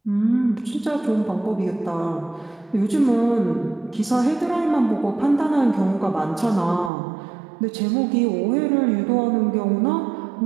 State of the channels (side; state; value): left; drops out; at 6.9 s